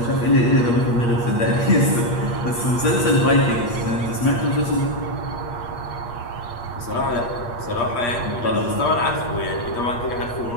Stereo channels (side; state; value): right; late; 8.5 ms